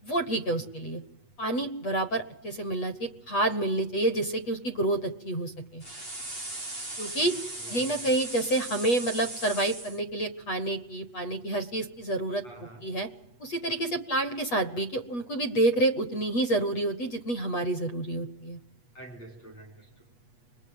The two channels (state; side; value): late; right; 8.2 ms